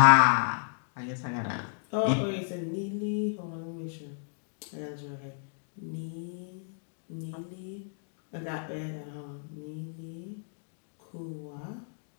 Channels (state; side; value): silent; right; digital silence